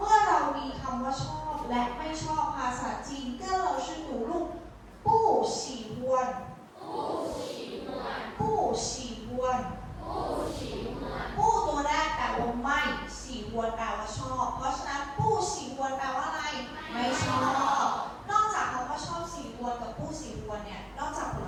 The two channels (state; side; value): identical; both; correlation 1.00